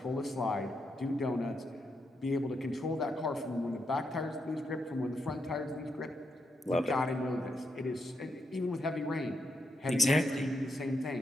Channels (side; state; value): both; normal; correlation 0.81